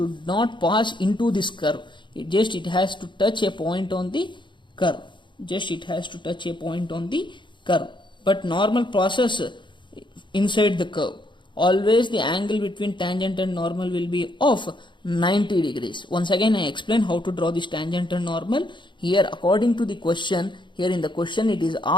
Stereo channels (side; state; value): right; late; 0.23 ms